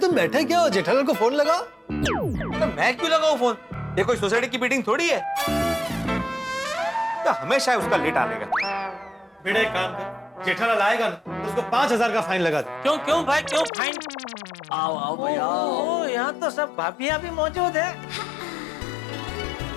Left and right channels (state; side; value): drops out; right; at 13.7 s